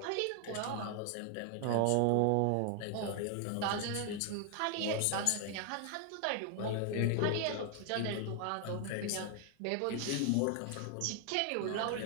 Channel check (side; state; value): both; different; correlation 0.00